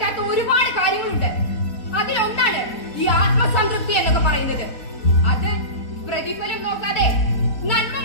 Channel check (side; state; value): right; late; 4.1 ms